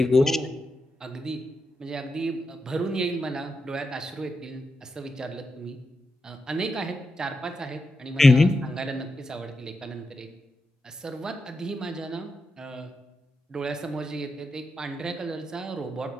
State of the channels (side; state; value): both; normal; correlation 0.87